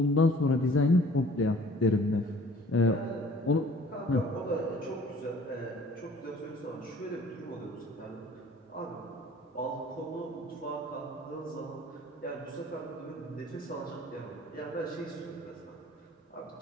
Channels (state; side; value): normal; both; correlation 0.51